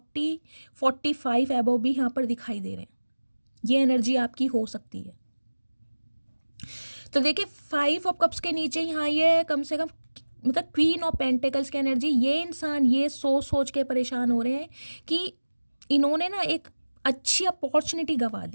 एबव भी यहाँ पर दिखाई दे रहे हैं, ये एनर्जी आपकी हो सकती है। तो देखिए 5 ऑफ कप्स के नीचे यहाँ ये कम से कम मतलब क्वीन ऑफ पेंटिकल्स की एनर्जी, ये इंसान ये सोच के परेशान हो रहे हैं कि इन्होंने ना एक अच्छी अपॉर्चुनिटी गंवा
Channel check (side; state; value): both; inverted; correlation -1.00